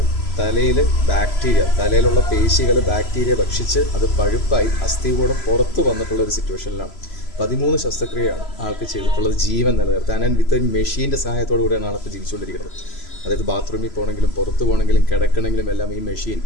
തലയിൽ ബാക്ടീരിയ, തലയിലുള്ള പേശികൾ ബാക്ടീരിയ ഭക്ഷിച്ച് അത് പഴുപ്പായി അസ്ഥികൂടം പുറത്ത് വന്നിട്ടുള്ള ഒരു സിറ്റുവേഷനിലാണ്. 13 ശസ്ത്രക്രിയയാണ് ആൾക്ക് ചെയ്തിട്ടുള്ളത് ജീവൻ നിലനിർത്താൻ. ആൻഡ് വിത്ത് മെഷീൻ്റെ സഹായത്തോടു കൂടിയാണ് ആളിപ്പോൾ ജീവിച്ചുകൊണ്ടിരിക്കുന്നത്. അതായത് ബാത്റൂമിൽ പോകണമെങ്കിലും പുറത്ത് പോകണമെങ്കിലും കിടക്കണമെങ്കിലും എല്ലാം ഈ മെഷീൻ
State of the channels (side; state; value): right; late; 3.0 ms